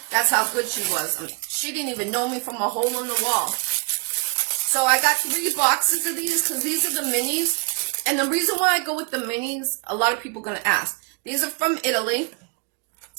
That's how good she was. She didn't even know me from a hole in the wall. So I got 3 boxes of these because these are the minis. And the reason why I go with the minis, a lot of people are going to ask. These are from Italy.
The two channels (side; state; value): left; quieter; 36.6 dB